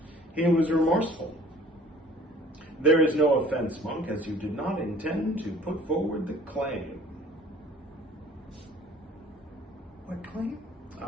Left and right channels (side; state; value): both; normal; correlation 0.52